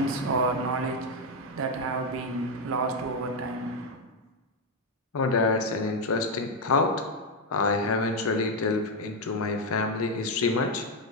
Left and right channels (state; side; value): normal; both; correlation 0.03